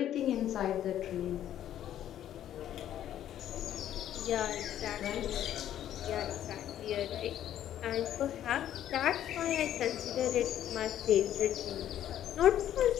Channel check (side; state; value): right; quieter; 11.3 dB